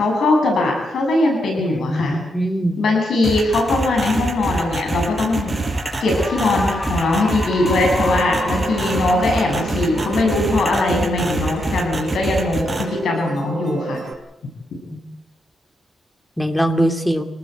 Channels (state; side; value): normal; both; correlation 0.81